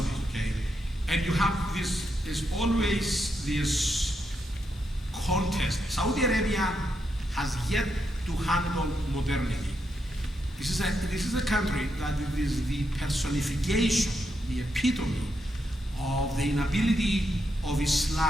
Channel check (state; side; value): normal; both; correlation 0.82